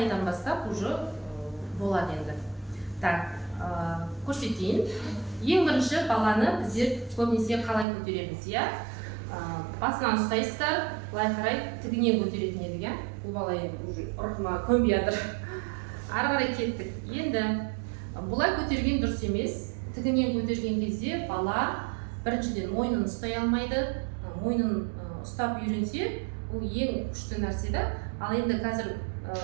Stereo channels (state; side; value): drops out; left; at 7.9 s